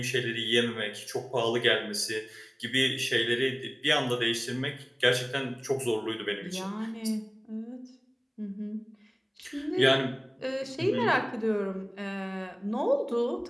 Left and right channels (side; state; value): both; identical; correlation 1.00